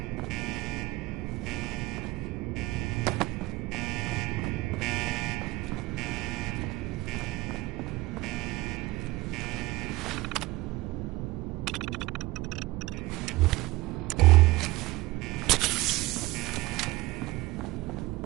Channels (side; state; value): left; quieter; 19.6 dB